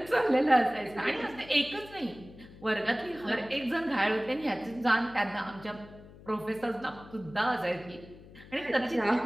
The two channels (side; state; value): left; noise; hum, 20 dB below the sound